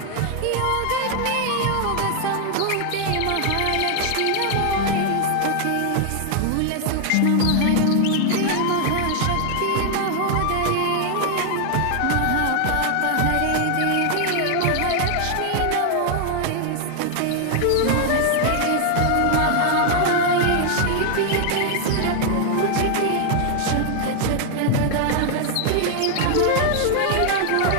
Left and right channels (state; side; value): different; both; correlation 0.00